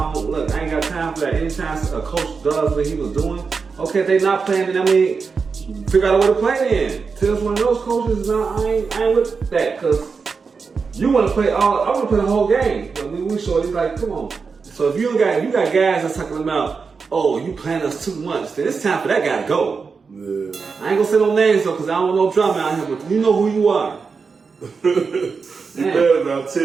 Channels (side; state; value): left; quieter; 5.1 dB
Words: I ain't got time for that. Anytime a coach does what he was doing, okay, if they not playing, then I mean, figure out a way to play in. Tibbs one of those coaches. I ain't with that because you want to play I want to play the whole game. I mean, we short. He's like, come on. So if you got guys that's talking about, oh, you playing us too much, then it's time for that guy to go. Yeah. I ain't gonna say no names though, because I don't want no drama out here, but you know who you are. You better about